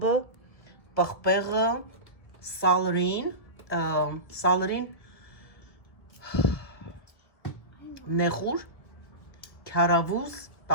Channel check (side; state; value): right; late; 1.5 ms